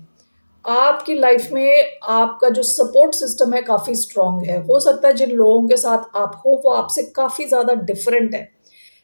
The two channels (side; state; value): both; inverted; correlation -1.00